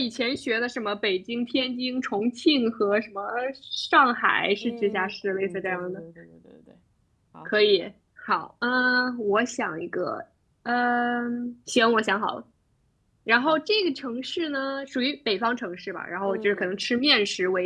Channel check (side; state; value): both; identical; correlation 1.00